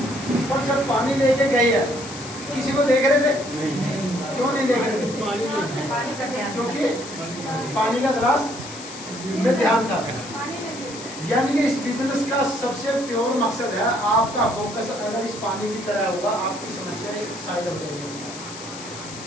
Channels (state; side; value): noise; left; hiss, 13 dB below the sound